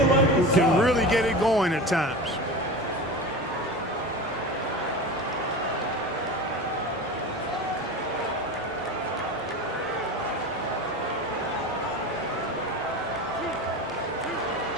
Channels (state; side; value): normal; both; correlation 0.29